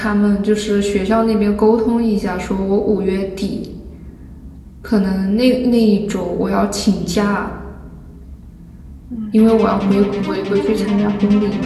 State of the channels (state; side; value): identical; both; correlation 1.00